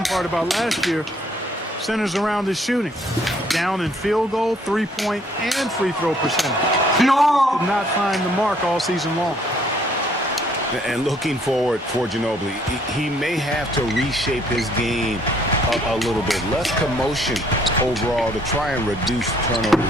part about last year centers around his shooting. Down in field goal, three-point, and free throw percentage. No! Did not find the mark all season long. And looking forward for Ginobili, he may have to reshape his game a little bit. Less commotion overall to try and reduce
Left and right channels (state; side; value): normal; both; correlation 0.64